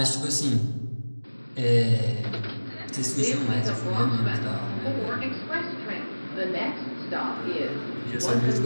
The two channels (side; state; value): both; inverted; correlation -1.00